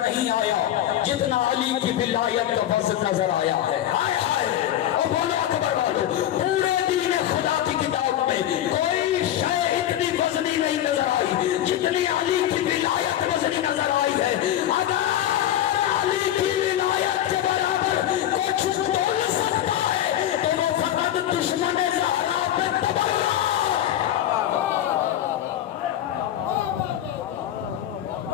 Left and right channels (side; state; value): right; quieter; 11.9 dB